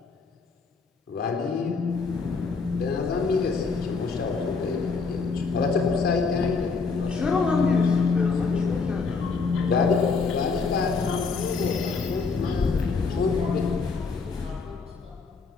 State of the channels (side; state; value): right; quieter; 4.6 dB